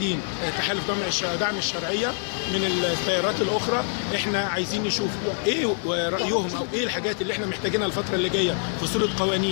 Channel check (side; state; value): right; silent; digital silence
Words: تحالف دعم الشرعيه من التيارات الاخرى. احنا عايزين نشوف ايه رايهم او ايه الحاجات اللي احنا محتاجينها الفتره اللي جايه في صوره